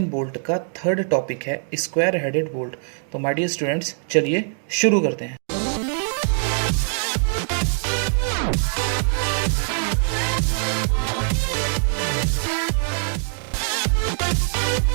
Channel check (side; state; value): left; silent; 59 dB below the other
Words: बोल्ट का थर्ड टॉपिक है, स्क्वायर हेडेड बोल्ट। तो माय डियर स्टूडेंट्स, चलिए शुरू करते हैं।